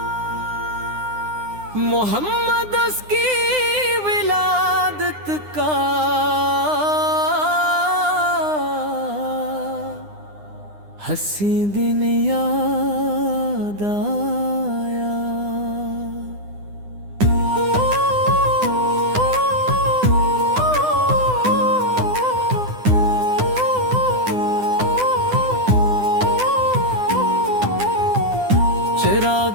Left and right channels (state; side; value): late; left; 9.8 ms